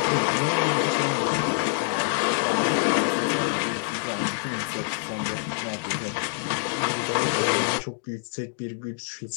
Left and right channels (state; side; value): silent; right; digital silence